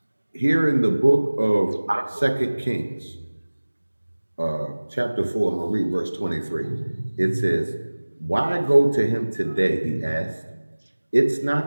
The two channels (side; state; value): both; inverted; correlation -1.00